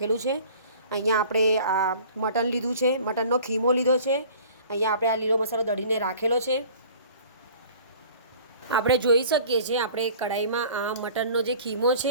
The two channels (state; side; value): inverted; both; correlation -0.47